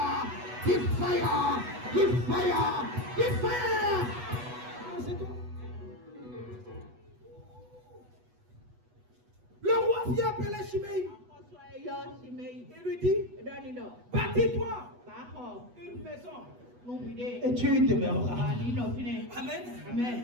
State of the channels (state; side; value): late; left; 8.2 ms